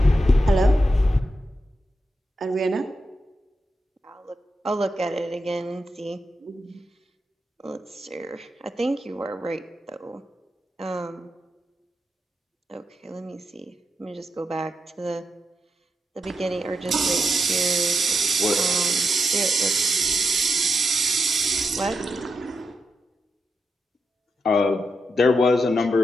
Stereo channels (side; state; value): both; normal; correlation 0.85